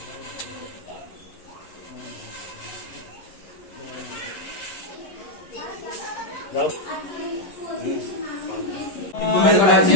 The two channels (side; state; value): right; late; 11 ms